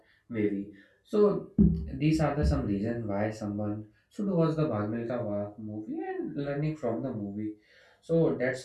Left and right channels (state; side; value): identical; both; correlation 1.00